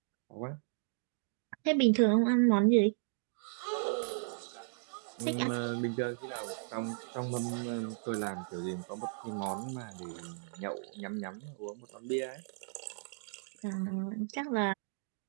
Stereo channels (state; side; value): silent; left; digital silence